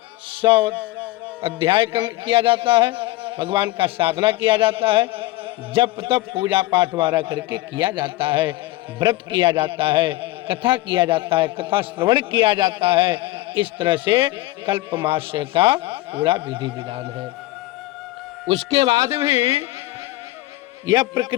100 अध्याय किया जाता है, भगवान का साधना किया जाता है, जप तप पूजा पाठ वारा करके किया जाता है, व्रत किया जाता है, कथा किया जाता है, कथा श्रवण किया जाता है। इस तरह से कल्पमास का पूरा विधि विधान है। उसके बाद भी यह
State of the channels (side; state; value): right; quieter; 18.3 dB